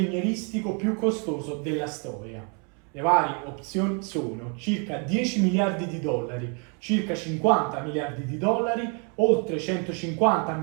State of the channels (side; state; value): left; quieter; 36.6 dB